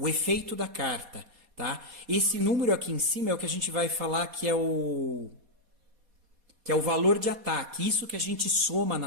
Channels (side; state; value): left; late; 4.2 ms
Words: efeito da carta, tá? Esse número aqui em cima é o que a gente vai falar que é o valor de ataque. Isso que a gente soma